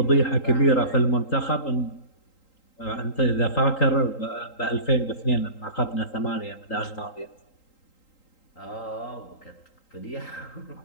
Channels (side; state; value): right; late; 3.8 ms